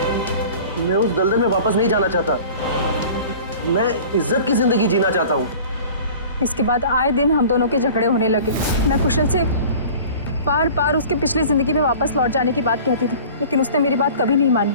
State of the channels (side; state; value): both; inverted; correlation -0.43